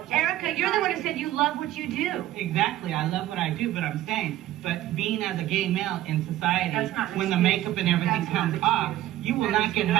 Erica, you're the one who said you love what you do. Exactly, I love what I do, but I'm saying, but being as a gay male in society, when the makeup and everything comes off, you will not get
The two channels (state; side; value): quieter; left; 14.2 dB